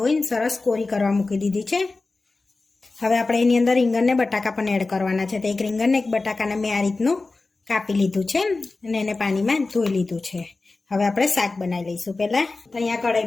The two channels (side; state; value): right; quieter; 3.6 dB